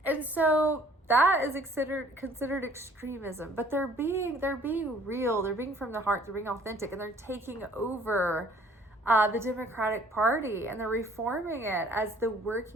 And so that is considered extremism, but they're being real. They're being from the heart. They're being authentic, and they're taking over the Democratic Party, and they're reforming it as the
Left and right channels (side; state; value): both; normal; correlation 0.57